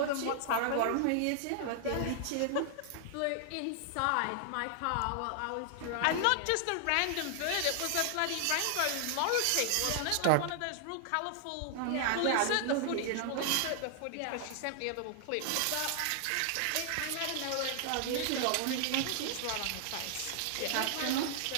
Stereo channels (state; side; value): different; both; correlation 0.00